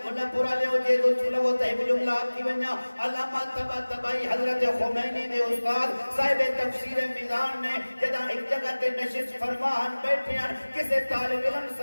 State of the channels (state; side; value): inverted; both; correlation -1.00